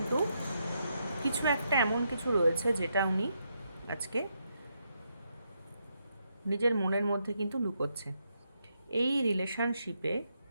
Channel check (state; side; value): inverted; both; correlation -0.80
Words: কিছু একটা এমন কিছু রয়েছে যেটা উনি আজকে নিজের মনের মধ্যে কিন্তু লুকোচ্ছে। এই রিলেশনশিপে